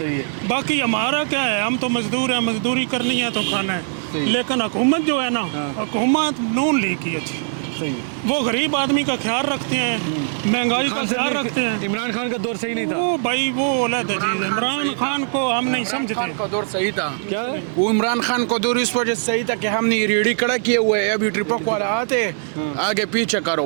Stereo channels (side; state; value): left; silent; 59 dB below the other